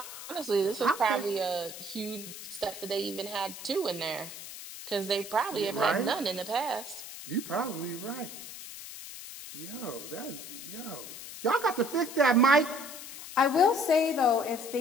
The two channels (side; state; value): left; noise; hiss, 12 dB below the sound